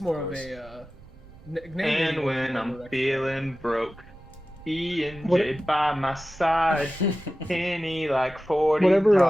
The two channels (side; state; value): right; noise; rumble, 22 dB below the sound